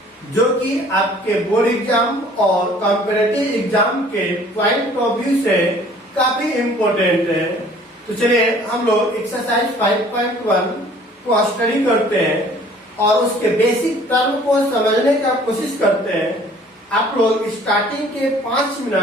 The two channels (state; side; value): normal; both; correlation 0.53